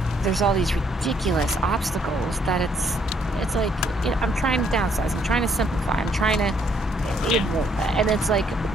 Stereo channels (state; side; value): normal; both; correlation 0.68